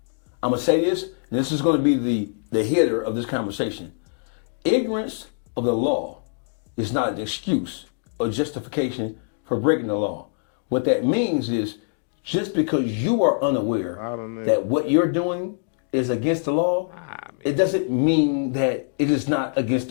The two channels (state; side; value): silent; right; digital silence